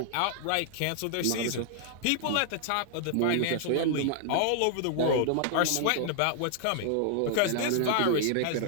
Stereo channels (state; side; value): different; both; correlation -0.01